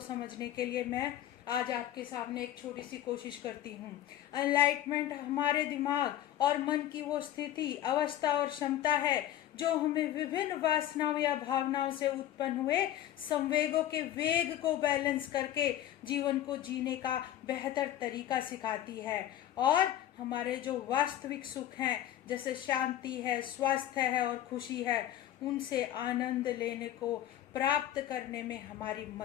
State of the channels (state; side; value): quieter; right; 12.3 dB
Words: समझने के लिए मैं आज आपके सामने एक छोटी सी कोशिश करती हूँ। एनलाइटमेंट हमारे दिमाग और मन की वो स्थिति, अवस्था और क्षमता है जो हमें विभिन्न वासनाओं या भावनाओं से उत्पन्न हुए संवेगों के वेग को बैलेंस करके जीवन को जीने का बेहतर तरीका सिखाती है, और हमारे जो वास्तविक सुख हैं जैसे शांति है, स्वास्थ्य है और खुशी है, उनसे आनंद लेने को प्राप्त करने में हमारी